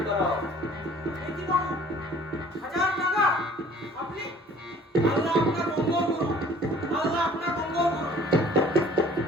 করাও। দেখি বাবু, 1000 টাকা আপনি, আল্লাহ আপনার মঙ্গল করুন, আল্লাহ আপনার মঙ্গল করুন।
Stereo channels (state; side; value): normal; both; correlation 0.52